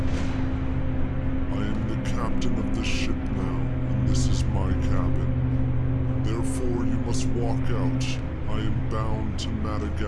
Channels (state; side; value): identical; both; correlation 1.00